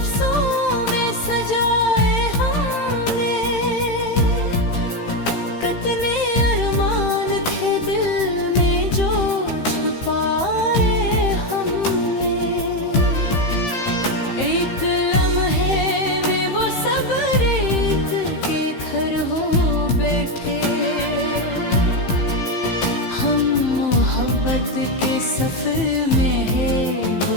मोहब्बत के सफर में है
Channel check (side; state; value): right; late; 15 ms